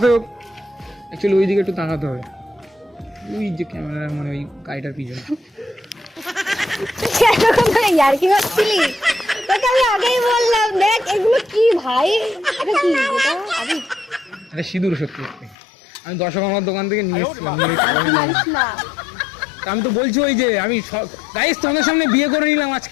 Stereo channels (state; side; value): drops out; right; at 15.6 s